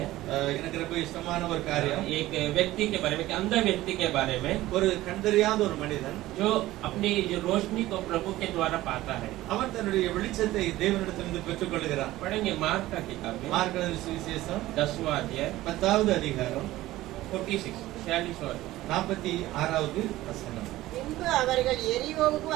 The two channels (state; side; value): quieter; left; 16.5 dB